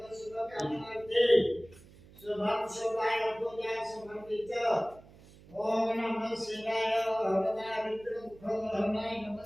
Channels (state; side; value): noise; right; hum, 22 dB below the sound